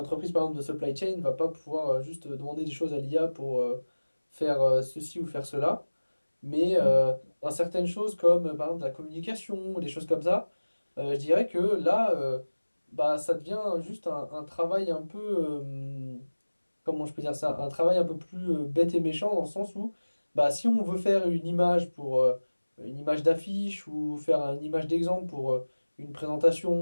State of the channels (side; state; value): both; inverted; correlation -1.00